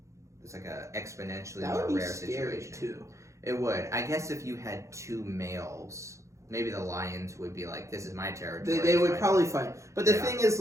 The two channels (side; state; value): left; late; 0.15 ms